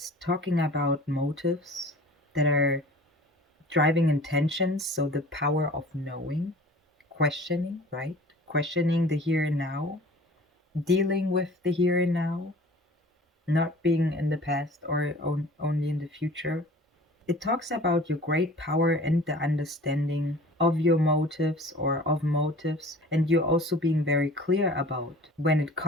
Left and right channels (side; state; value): both; normal; correlation 0.45